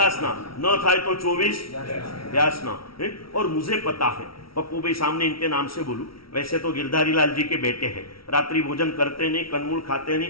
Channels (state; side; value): late; right; 0.75 ms